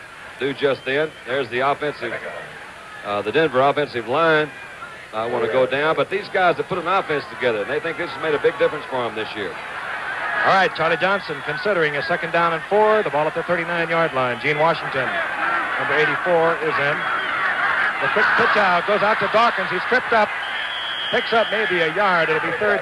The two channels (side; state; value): both; identical; correlation 1.00